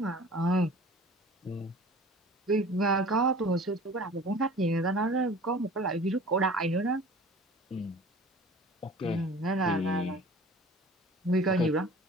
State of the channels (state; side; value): normal; both; correlation 0.44